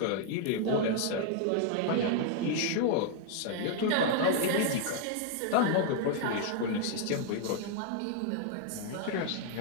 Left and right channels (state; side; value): different; both; correlation 0.00